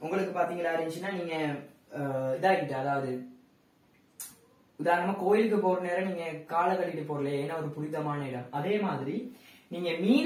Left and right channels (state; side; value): identical; both; correlation 1.00